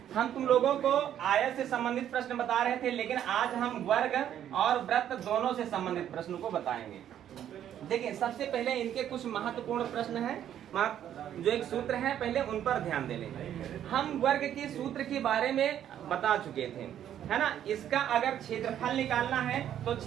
हम तुम लोगों को आयत से संबंधित प्रश्न बता रहे थे, लेकिन आज हम वर्ग और वृत्त दोनों से संबंधित प्रश्न को बताएंगे। देखिए, सबसे पहले इनके कुछ महत्वपूर्ण प्रश्न हैं, जो एक सूत्र है, पहले उन पर ध्यान दे लें। हम वर्ग के सूत्र के बारे में बता चुके थे, है ना। इसका अगर क्षेत्रफल निकालना है तो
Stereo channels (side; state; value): left; quieter; 10.5 dB